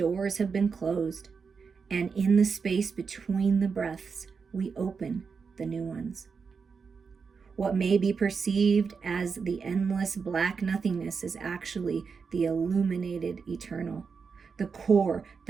have been closed, and in the space between the breaths, we open the new ones. What may be perceived as the endless black nothingness is actually the illuminated eternal, the core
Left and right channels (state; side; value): quieter; left; 5.5 dB